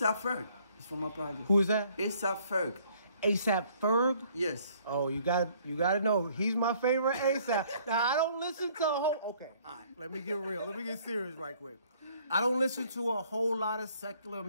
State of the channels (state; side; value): inverted; both; correlation -0.61